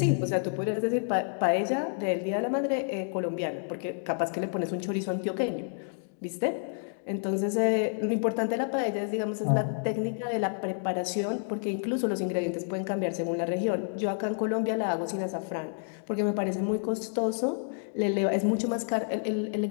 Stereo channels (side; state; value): right; silent; digital silence